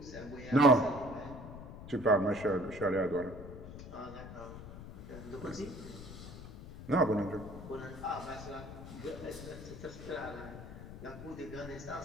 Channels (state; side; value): noise; left; rumble, 12 dB below the sound